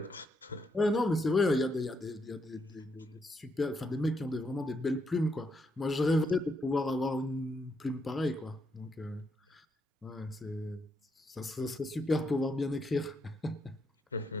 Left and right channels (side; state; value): both; normal; correlation 0.79